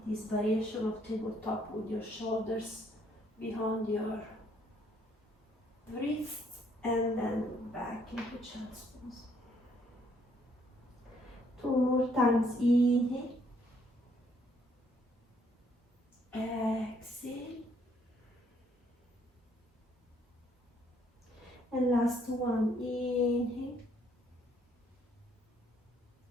this variation of tabletop with your shoulders behind your wrist, and then back into child's pose. 2 more times. Inhale, exhale, and last one. Inhale,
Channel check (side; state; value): both; normal; correlation 0.68